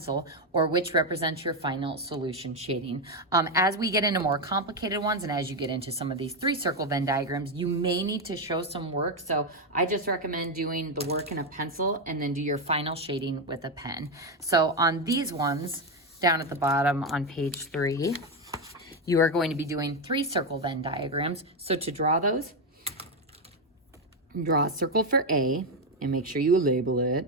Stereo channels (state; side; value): normal; both; correlation 0.08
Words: or which represents your final solution shading. As we get into more complicated ones and as you get into some of these 3-circle Venn diagrams, you may need to show some work. So I just recommend doing the work in a pencil and then do your final shading with a pen. So on these ones, down at the bottom on page 3, you are going to be doing 3-circle Venn diagrams. So to draw those, draw a circle for A and make sure you label